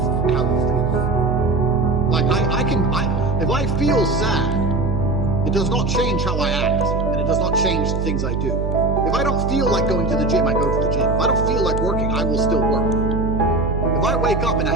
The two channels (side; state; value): right; noise; hum, 1 dB below the sound